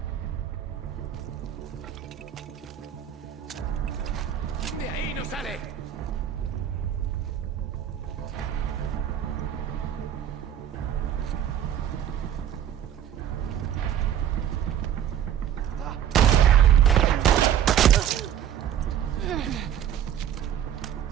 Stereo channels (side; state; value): left; quieter; 10.0 dB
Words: ¡De ahí no sale!